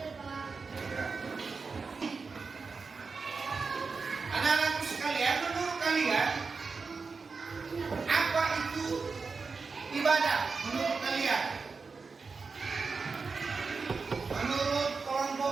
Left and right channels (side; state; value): left; quieter; 4.6 dB